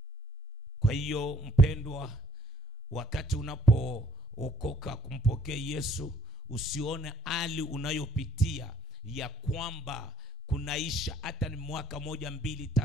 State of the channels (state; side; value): normal; both; correlation 0.66